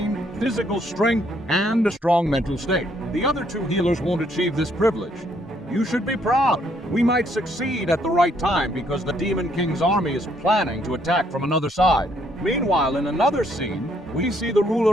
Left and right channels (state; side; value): normal; both; correlation 0.69